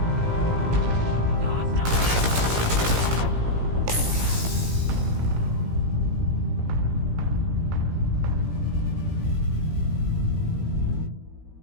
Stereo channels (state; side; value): late; left; 17 ms